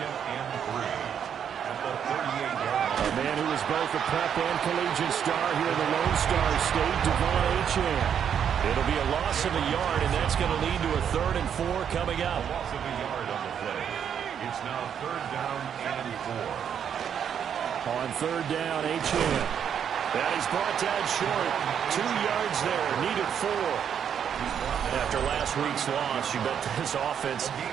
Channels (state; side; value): quieter; left; 8.3 dB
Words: and 3 at the 38-yard line. A man who was both a prep and collegiate star here in the Lone Star State, Devon Achane. It'll be a loss of a yard, and that's going to lead to a 3rd and 4 coming up. A loss of a yard on the play. It's now 3rd down and 4. On 3rd down, Achane. That is brought down short. 2 yards there, needed 4. After last week's loss, you bet this offense